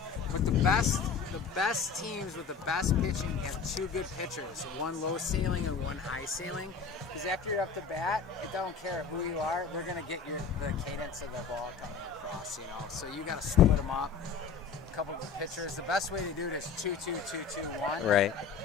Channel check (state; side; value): quieter; right; 5.9 dB